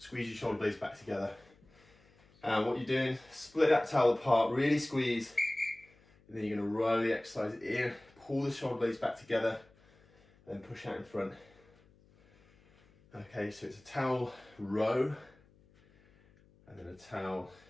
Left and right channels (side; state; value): left; noise; hum, 29 dB below the sound